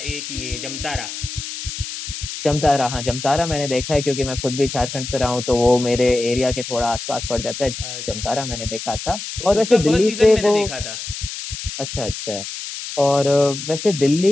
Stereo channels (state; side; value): noise; left; hiss, 8 dB below the sound